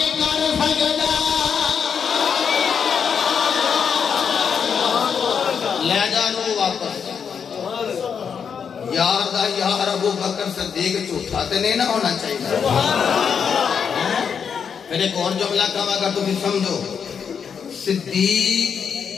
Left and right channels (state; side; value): quieter; right; 6.9 dB